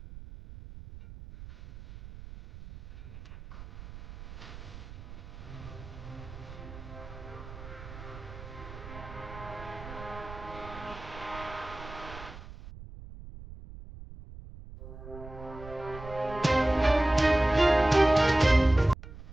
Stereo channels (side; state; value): right; noise; rumble, 14 dB below the sound